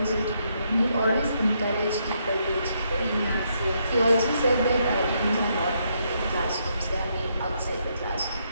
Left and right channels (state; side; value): inverted; both; correlation -0.76